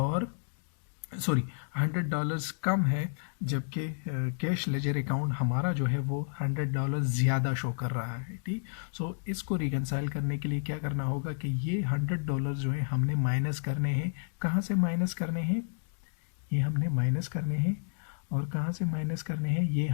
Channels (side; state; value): right; silent; digital silence